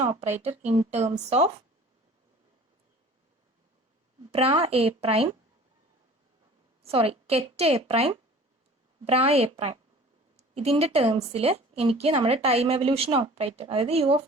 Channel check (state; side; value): normal; both; correlation 0.46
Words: operator in terms of bra A prime, sorry ket A prime, bra A prime. ഇതിൻ്റെ ടേംസിൽ എനിക്ക് നമ്മുടെ ടൈം എവല്യൂഷൻ ഓപ്പറേറ്റർ, അതായത് U of